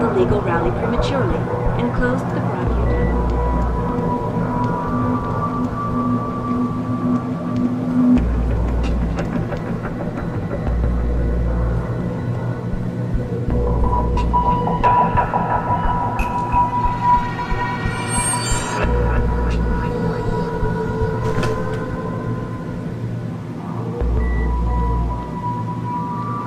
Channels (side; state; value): both; identical; correlation 1.00